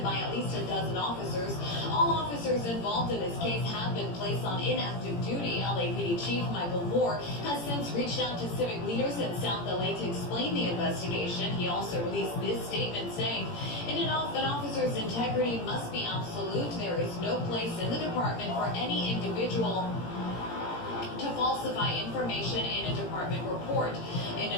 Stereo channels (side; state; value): right; late; 17 ms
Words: by at least a dozen officers. All officers involved in this case have been placed on inactive duty. LAPD Chief Michael Moore has since reached out to civic leaders in South LA to explain the investigation. He also released this statement saying, an officer's integrity must be absolute. There is no place in the department for any individual to falsify information in a department report. In